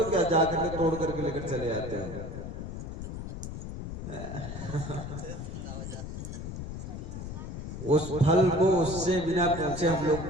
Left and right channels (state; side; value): noise; left; rumble, 7 dB below the sound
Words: क्या? जाकर के तोड़ करके लेकर चले आते हो? उस फल को उससे बिना पूछे हम